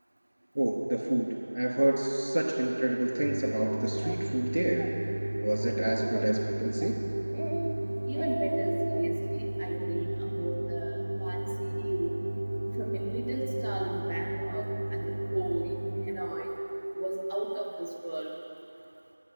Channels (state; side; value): inverted; both; correlation -1.00